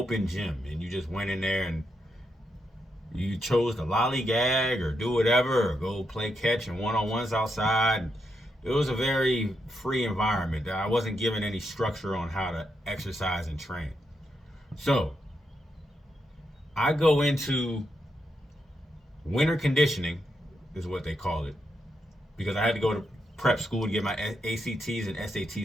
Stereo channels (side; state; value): both; normal; correlation 0.83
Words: gym, and you just went in there and you chose to lollygag or do whatever or go play catch and one-on-ones outside. It was a very free environment. I wasn't given any structure on how to exercise and train. So I go into winter conditioning, is what they call it, because I had to go to prep school to get my ACTs and SAT